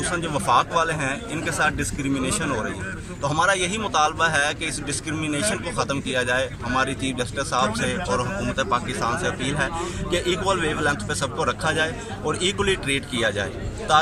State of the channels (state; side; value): identical; both; correlation 1.00